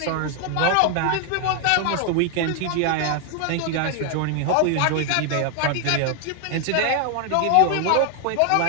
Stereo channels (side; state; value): both; different; correlation 0.00